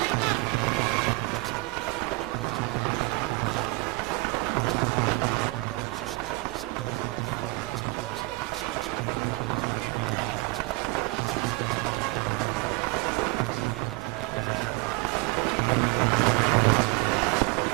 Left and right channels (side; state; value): left; quieter; 24.7 dB